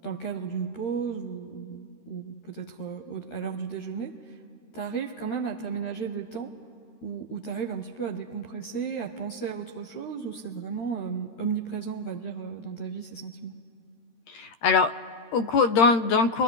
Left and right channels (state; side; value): late; right; 13 ms